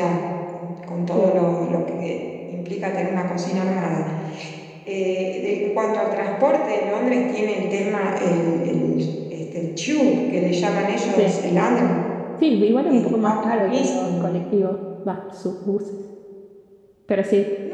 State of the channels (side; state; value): both; identical; correlation 1.00